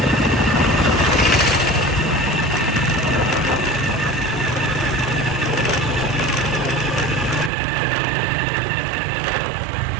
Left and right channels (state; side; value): drops out; left; at 7.5 s